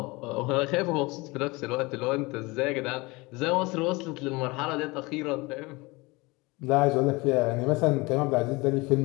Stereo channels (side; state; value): right; quieter; 24.1 dB